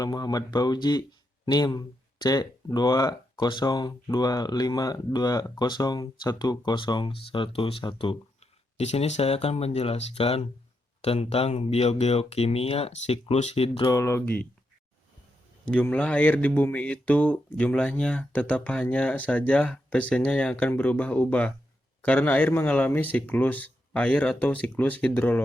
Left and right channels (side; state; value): both; normal; correlation 0.83